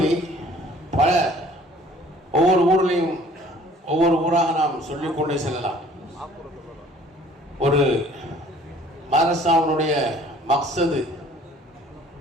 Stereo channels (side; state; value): both; normal; correlation 0.54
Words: பல ஒவ்வொரு ஊர்லேயும் ஒவ்வொரு ஊராக நாம் சொல்லிக்கொண்டே செல்லலாம். ஒரு மதரசாவுடைய மக்சது,